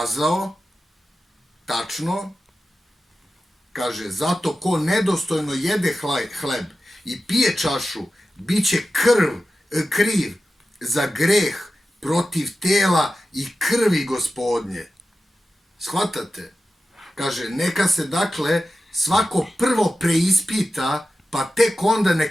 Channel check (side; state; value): both; normal; correlation 0.93